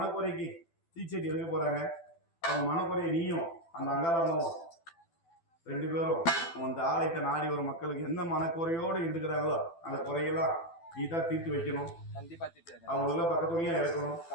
தீச்செடி எடுக்க போறாங்க. அவங்க மனக்குறையை நீயும் அந்த அங்காளம்மாவும் 2 பேரும் அந்த ஆலயத்தை நாடி ஒரு மக்களுக்கு எந்த மனக்குறையோடு இருக்கிறாங்களோ அந்த குறையெல்லாம் நீ தான் தீர்த்து வைக்கணும். கண்டிப்பா தீர்த்து அவங்களெல்லாம் பக்கத்துணையா இருக்கணும்.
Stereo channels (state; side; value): late; right; 12 ms